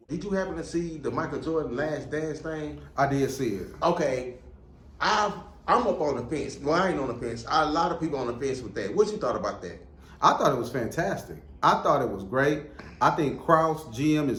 Did you happen to see the Michael Jordan Last Dance thing? I did see it. Okay, I'm up on the fence. Well, I ain't on the fence. A lot of people on the fence with that. What you thought about that? I thought it was fantastic. I thought it was great. I think Krause, GM,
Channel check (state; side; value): identical; both; correlation 1.00